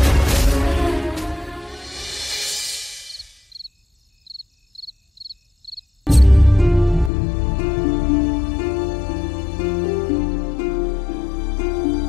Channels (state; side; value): drops out; right; at 7.1 s